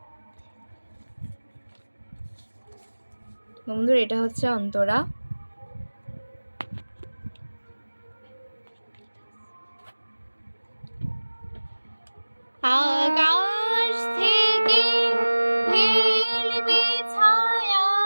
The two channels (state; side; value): inverted; both; correlation -1.00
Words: বন্ধুরা, এটা হচ্ছে অন্তরা। আকাশ থেকে ফেলবে ছায়া